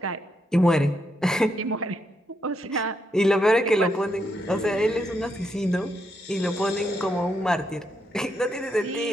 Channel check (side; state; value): both; normal; correlation 0.79